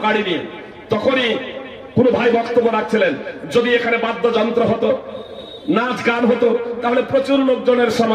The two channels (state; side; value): identical; both; correlation 1.00